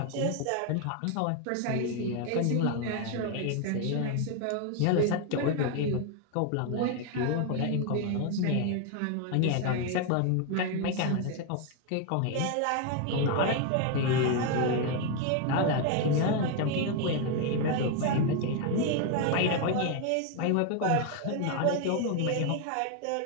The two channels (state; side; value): different; both; correlation 0.01